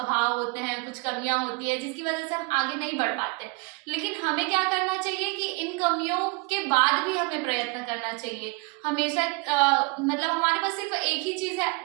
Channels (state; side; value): quieter; left; 28.4 dB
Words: होते हैं, कुछ कमियां होती है जिसकी वजह से हम आगे नहीं बढ़ पाते। लेकिन हमें क्या करना चाहिए कि इन कमियों के बाद भी हमें प्रयत्न करना चाहिए हमेशा। मतलब हमारे पास सिर्फ एक ही चीज है,